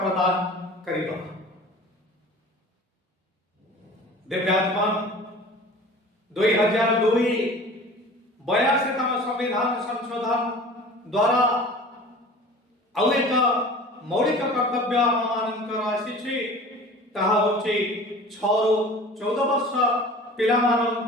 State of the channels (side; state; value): both; normal; correlation 0.41